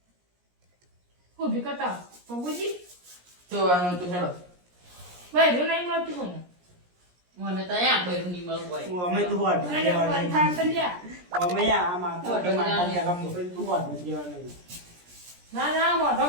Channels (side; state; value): left; late; 17 ms